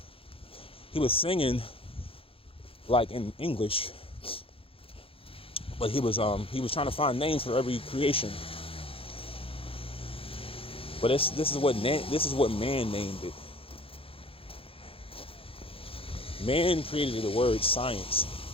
He was singing like in English, but he was trying to find names for every creation. But this is what man named it. Man created the word science,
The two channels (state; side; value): late; right; 0.27 ms